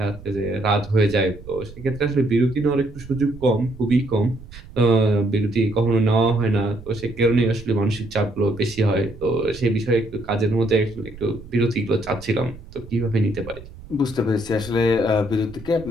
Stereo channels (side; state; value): right; noise; rumble, 17 dB below the sound